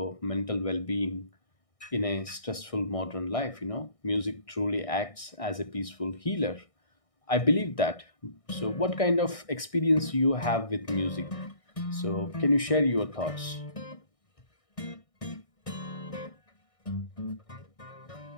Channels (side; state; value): right; late; 1.6 ms